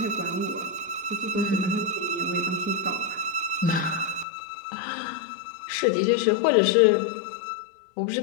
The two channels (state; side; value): drops out; right; at 4.2 s